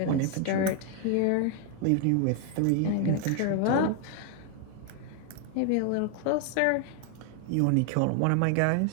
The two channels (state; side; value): different; both; correlation 0.00